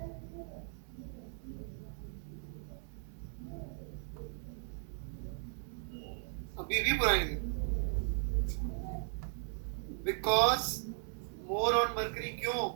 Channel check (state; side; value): silent; left; digital silence